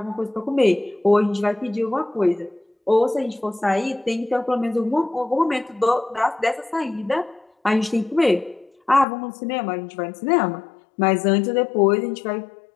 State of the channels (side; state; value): right; drops out; at 9.1 s